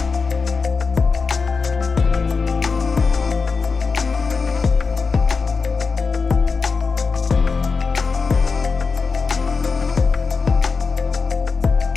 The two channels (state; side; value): quieter; right; 4.8 dB